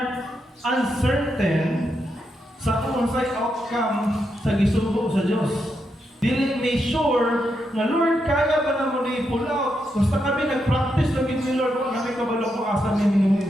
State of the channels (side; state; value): both; normal; correlation 0.83